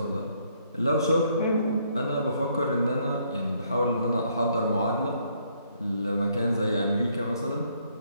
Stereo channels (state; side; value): inverted; both; correlation -0.69